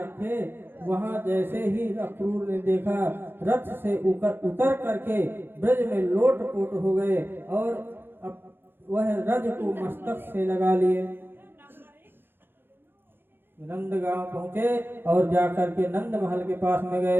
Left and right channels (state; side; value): late; left; 0.10 ms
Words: वहाँ जैसे ही अक्रूर ने देखा, रथ से उतर करके ब्रज में लोट पोट हो गए और अब वह रज को मस्तक से लगा लिए। नंद गांव पहुंचे और जाकर के नंद महल के पास में